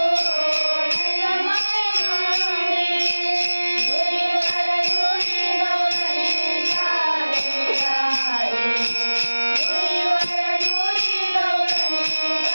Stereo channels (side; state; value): both; inverted; correlation -1.00